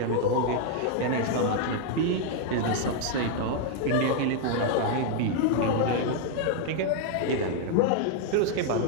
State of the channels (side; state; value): both; different; correlation 0.00